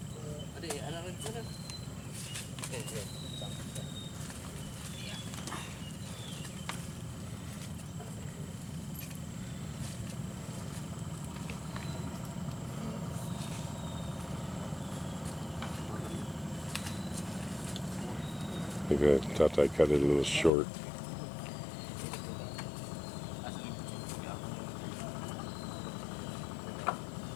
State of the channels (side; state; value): right; drops out; at 20.5 s